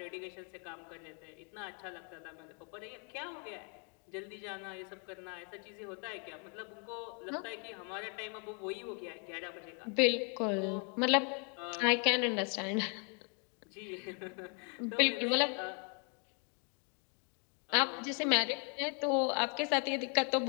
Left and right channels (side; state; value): right; quieter; 39.0 dB